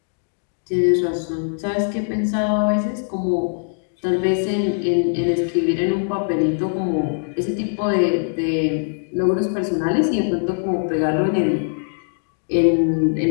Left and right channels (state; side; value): silent; right; digital silence